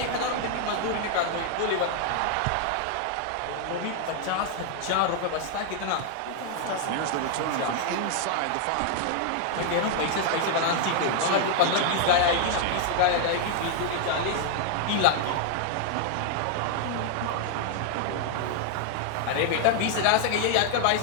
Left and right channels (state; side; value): different; both; correlation 0.00